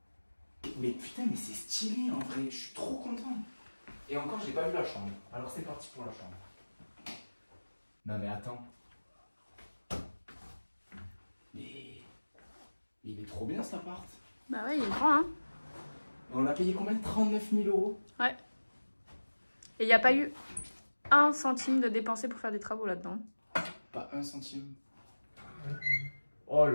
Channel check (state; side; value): inverted; both; correlation -1.00